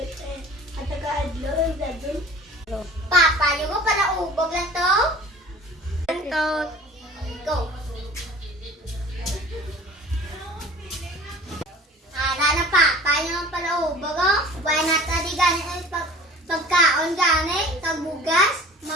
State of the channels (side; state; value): both; normal; correlation 0.44